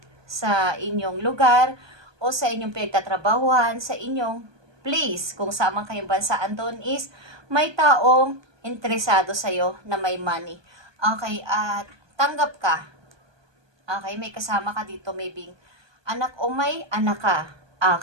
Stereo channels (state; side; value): late; left; 1.2 ms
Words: sa inyong lugar, o sa inyong pinagtatrabahuhan, sa inyong place, kung saan man kayong bansa andon is, may taong interesado sa'yo na may money. Okay, at tanggap ka. Okay, may kasama ka dito, maybe anak o may anak ka.